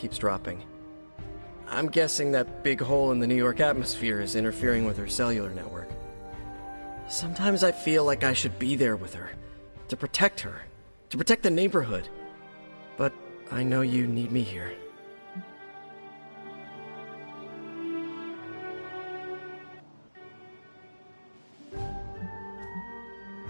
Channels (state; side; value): inverted; both; correlation -1.00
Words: dropping. I'm guessing that big hole in the New York atmosphere is interfering with her cellular network. Sometimes I feel like I should be there with her, to protect the neighborhood. But I know you need me here.